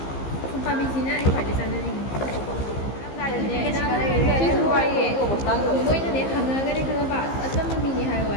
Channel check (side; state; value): right; late; 15 ms